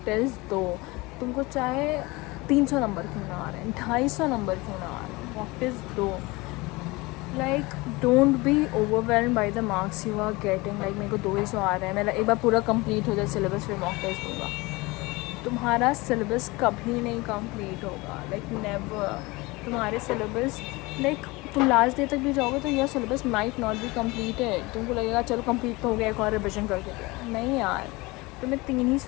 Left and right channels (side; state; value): right; quieter; 23.3 dB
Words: test दो. तुमको चाहे 300 नंबर क्यों ना आ रहे हैं, 250 नंबर क्यों ना आ रहे हैं, मॉक टेस्ट दो. Like don't be overwhelm by the marks you are getting. Like मेरे को 200 आ रहे हैं, मेरा एक बार पूरा कंप्लीट हो जाए सिलेबस, फिर मॉक टेस्ट दूँगा. तुम्हारा सिलेबस कभी नहीं कंप्लीट होगा. Like never. तुम्हारे सिलेबस, लाइक तुम लास्ट डे तक भी जाओगे तो यह syllabus might not be completed. तुमको लगेगा चलो कंप्लीट तो हो गया, एक और रिविजन करके दो. नहीं यार, तुम्हें